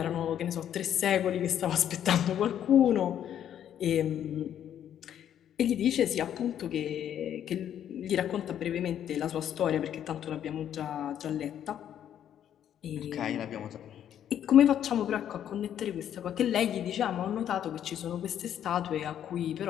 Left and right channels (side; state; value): right; quieter; 10.1 dB